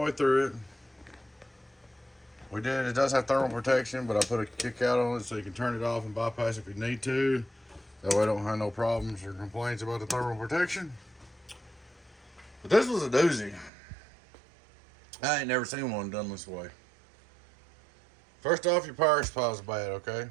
way through it. We did, it does have thermal protection, but I put a kick out on it so you can turn it off and bypass if you need to. That way I don't have no problems or complaints about the thermal protection. But this was a doozy. I ain't never seen one done this way. First off, your power supply's bad, okay?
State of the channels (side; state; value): left; drops out; at 13.7 s